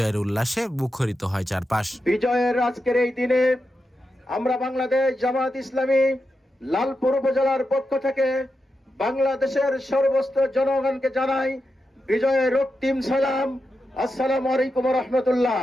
উল্লাসে মুখরিত হয় চারপাশ। বিজয়ের আজকের এই দিনে আমরা বাংলাদেশ জামায়াত ইসলামী লালপুর উপজেলার পক্ষ থেকে বাংলাদেশের সর্বস্ত জনগণকে জানাই বিজয়ের রক্তিম সালাম। আসসালামু আলাইকুম ওয়া রাহমাতুল্লাহ।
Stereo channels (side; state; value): both; normal; correlation 0.88